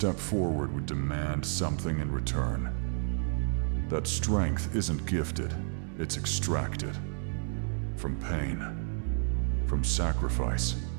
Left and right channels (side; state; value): left; silent; 57 dB below the other